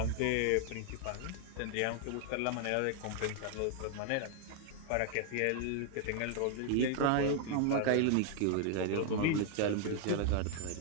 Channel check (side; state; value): both; different; correlation 0.00